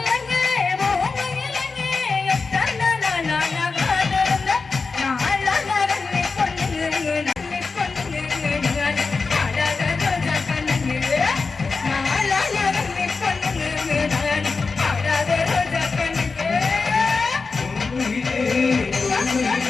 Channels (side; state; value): right; quieter; 4.4 dB